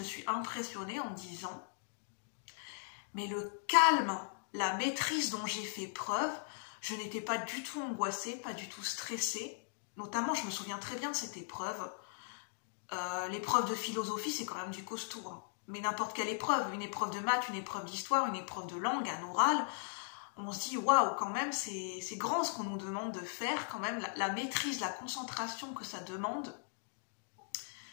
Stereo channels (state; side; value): silent; right; digital silence